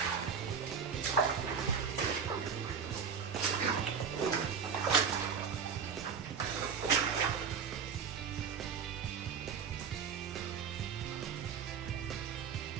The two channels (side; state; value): left; quieter; 6.4 dB